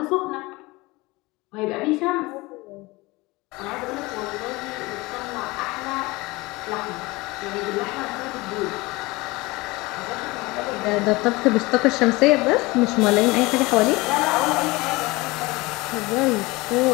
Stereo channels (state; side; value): quieter; right; 22.5 dB